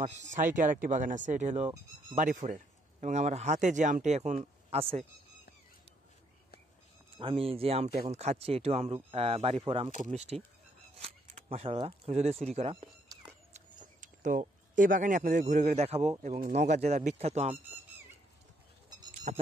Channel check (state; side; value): normal; both; correlation 0.71